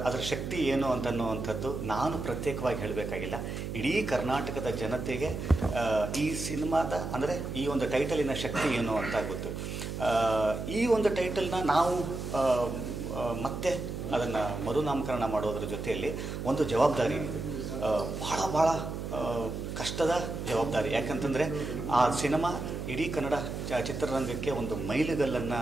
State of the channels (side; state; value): right; noise; hum, 5 dB below the sound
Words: ಶಕ್ತಿ ಏನು ಅಂತನ್ನುವಂಥದ್ದು ನಾನು ಪ್ರತ್ಯೇಕವಾಗಿ ಹೇಳಬೇಕಾಗಿಲ್ಲ. ಇಡೀ ಕರ್ನಾಟಕದ ಜನತೆಗೆ ಈ ಸಿನಿಮಾದ ಅಂದರೆ ಈ ಒಂದು ಟೈಟಲಿನ ಶಕ್ತಿ ಏನು ಅಂತ ಗೊತ್ತು. ಈ ಒಂದು ಟೈಟಲ್ನ ನಾವು ಮತ್ತೆ ಅದನ್ನು ಮರುನಾಮಕರಣ ಮಾಡೋದ್ರ ಜೊತೆಯಲ್ಲಿ ಒಂದು ಜವಾಬ್ದಾರಿ, ಭಾಳ ಕಷ್ಟದ ಜವಾಬ್ದಾರಿ. ಯಾಕಂತಂದರೆ ಆ ಸಿನಿಮಾ ಇಡೀ ಕನ್ನಡ ಚಿತ್ರರಂಗಕ್ಕೆ ಒಂದು ಮೈಲಿಗಲ್ಲನ್ನು